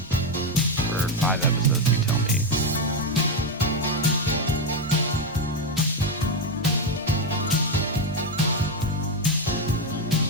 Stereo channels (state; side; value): normal; both; correlation 0.08